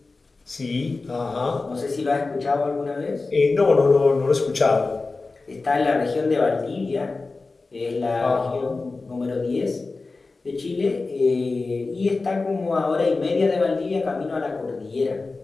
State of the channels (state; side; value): quieter; right; 3.7 dB